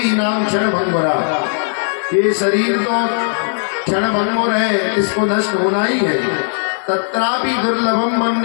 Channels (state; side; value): silent; right; digital silence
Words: नाम क्षण भंगुरा। ये शरीर तो क्षण भंगुर है, इसको नष्ट होना ही है। तत्रापि दुर्लभम